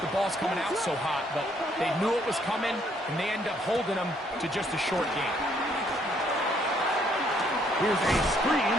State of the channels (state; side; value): normal; both; correlation 0.67